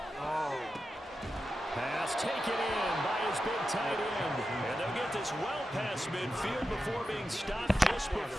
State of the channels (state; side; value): normal; both; correlation 0.90